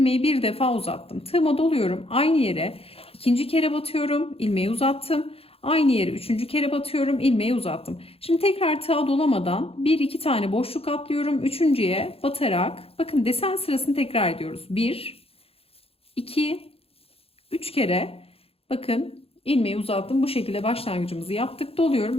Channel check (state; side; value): late; right; 0.28 ms